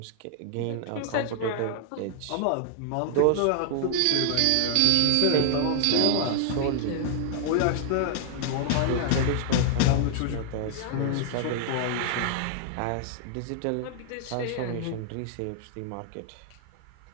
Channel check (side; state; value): both; different; correlation -0.01